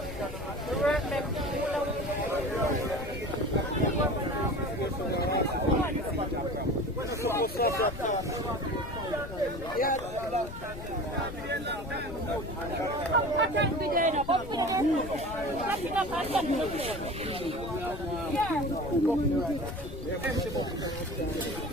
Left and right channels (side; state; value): left; noise; rumble, 11 dB below the sound